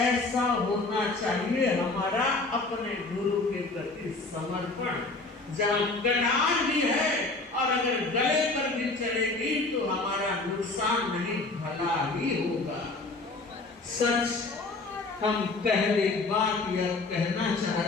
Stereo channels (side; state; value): right; quieter; 3.4 dB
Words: होना चाहिए हमारा अपने गुरु के प्रति समर्पण। जहाँ कटान भी है और अगर गले पर भी चलेगी तो हमारा नुकसान नहीं, भला ही होगा। सच हम पहली बात यह कहना चाह